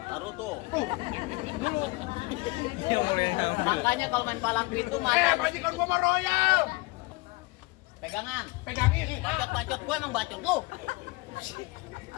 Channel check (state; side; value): quieter; right; 24.0 dB